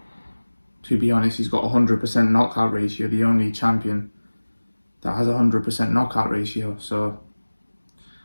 To be honest, he's got a 100% knockout ratio, the only champion that has a 100% knockout ratio. So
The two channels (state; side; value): inverted; both; correlation -1.00